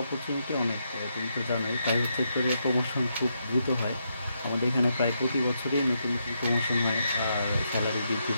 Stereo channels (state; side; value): inverted; both; correlation -0.81